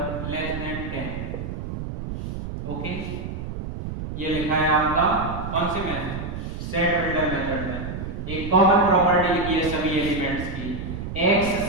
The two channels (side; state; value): right; noise; rumble, 6 dB below the sound